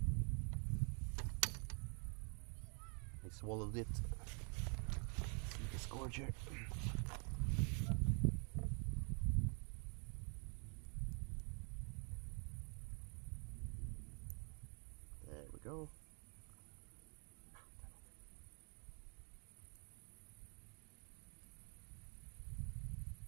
He swallowed it. See the scourger. There we go.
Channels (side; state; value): left; quieter; 39.1 dB